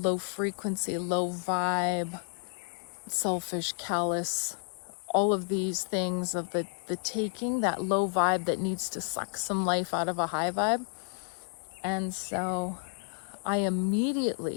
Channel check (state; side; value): silent; right; 57 dB below the other